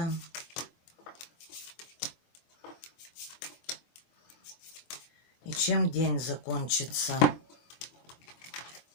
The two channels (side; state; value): right; late; 24 ms